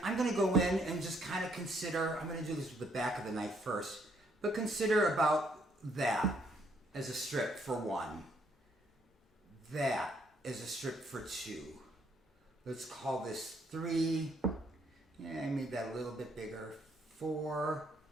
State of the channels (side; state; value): both; normal; correlation 0.69